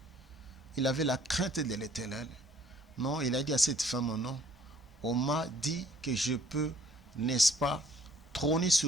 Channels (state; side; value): normal; both; correlation 0.59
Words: il avait la crainte de l'Éternel, non, il a dit à cette femme, non, on m'a dit que je peux, n'est-ce pas, trôner